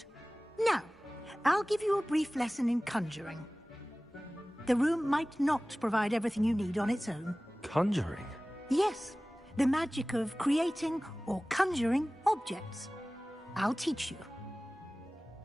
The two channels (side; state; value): both; normal; correlation 0.98